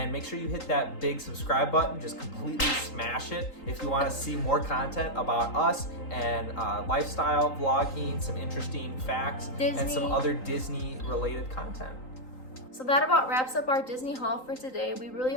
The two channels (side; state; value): right; late; 3.8 ms